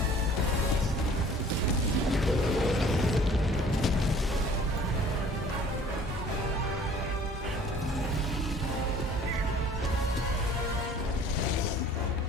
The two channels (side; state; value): both; normal; correlation 0.51